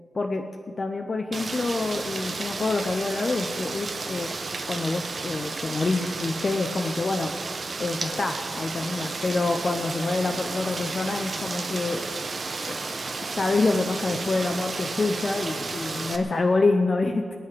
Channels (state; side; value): normal; both; correlation 0.92